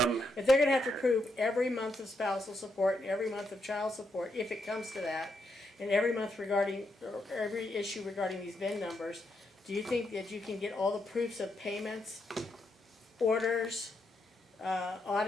If they're gonna have to prove every month of spousal support and every month of child support, if it comes to that, and every month regarding, or every issue regarding these VIN numbers, do you think that you can get all the proofs of payments, orders,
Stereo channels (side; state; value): both; normal; correlation 0.80